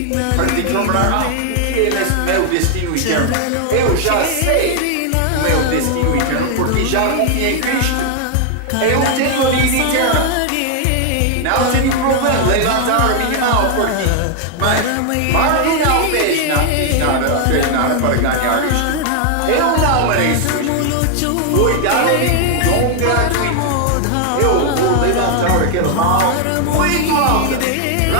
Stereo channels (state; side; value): different; both; correlation 0.00